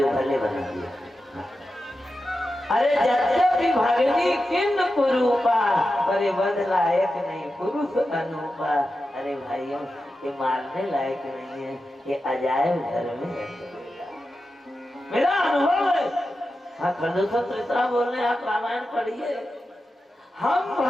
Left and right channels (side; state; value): both; normal; correlation 0.91